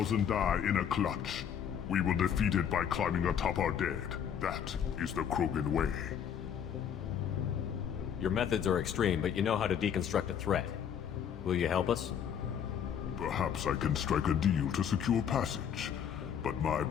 die in a clutch. We will defeat it by climbing atop our dead. That is the Krogan way. Your methods are extreme, but you know how to deconstruct a threat. Will you help us? Perhaps I can strike a deal to secure passage, but my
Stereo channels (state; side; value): quieter; right; 8.5 dB